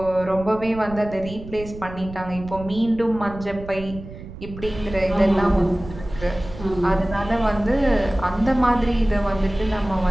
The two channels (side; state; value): right; noise; rumble, 13 dB below the sound